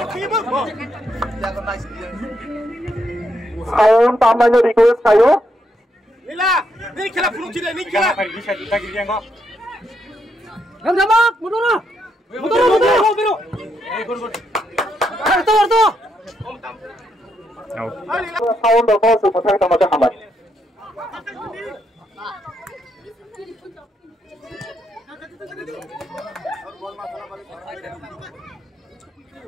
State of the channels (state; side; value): normal; both; correlation 0.78